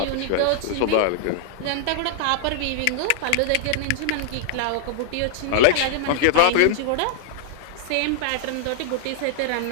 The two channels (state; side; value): different; both; correlation -0.01